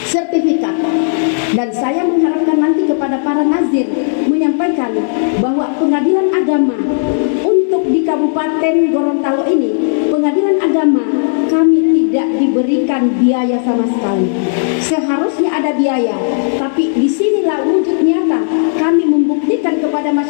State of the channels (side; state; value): right; silent; digital silence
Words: sertifikat. Dan saya mengharapkan nanti kepada para nazir menyampaikan bahwa pengadilan agama untuk di Kabupaten Gorontalo ini, pengadilan agama kami tidak diberikan biaya sama sekali. Seharusnya ada biaya, tapi disinilah wujud nyata kami membuktikan kepada